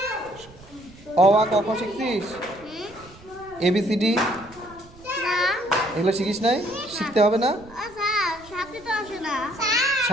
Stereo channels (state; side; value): noise; right; rumble, 22 dB below the sound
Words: অ আ ক খ শিখছিস? ABCD না এগুলো শিখিস নাই? শিখতে হবে না? আচ্ছা সাথে তো আসে না।